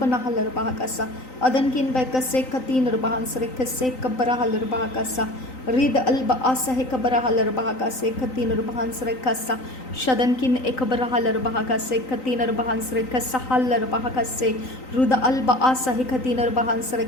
rubahakasa, adankin behkase katin rubahan sarekase kabarahal rubahakasa, Rid alba asa hekabarahal bahakase, katin rubahan sarekasa, shadankin ekabarahal bahakase, katin rubahan sarekasa halar bahakase, ruda alba asa hekatin rubahan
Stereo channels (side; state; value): right; late; 3.9 ms